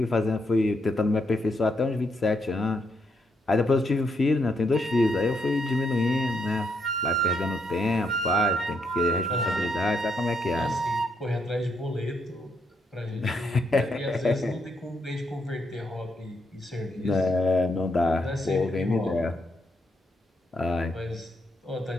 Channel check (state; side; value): normal; both; correlation 0.77